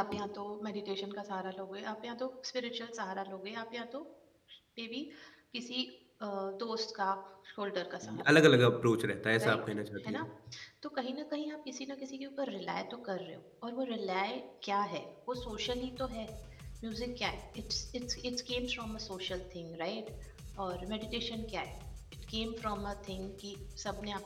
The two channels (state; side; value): identical; both; correlation 1.00